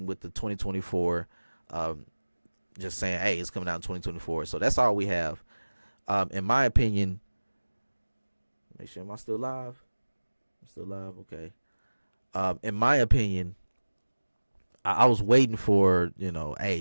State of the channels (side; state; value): both; inverted; correlation -1.00